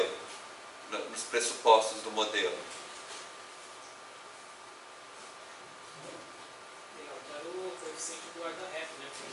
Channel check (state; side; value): identical; both; correlation 1.00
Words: nos pressupostos do modelo? Altera o coeficiente do guarda-reto, né?